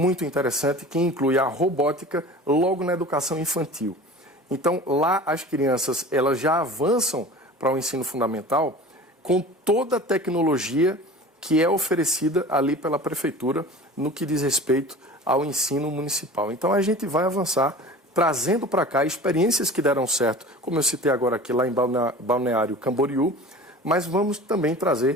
interessante, que inclui a robótica logo na educação infantil. Então, lá as crianças elas já avançam para o ensino fundamental com toda a tecnologia que é oferecida ali pela prefeitura no que diz respeito ao ensino municipal. Então, a gente vai avançar trazendo para cá experiências que deram certo, como eu citei agora aqui lá em Balneário Camboriú, mas vamos também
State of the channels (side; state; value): both; normal; correlation 0.39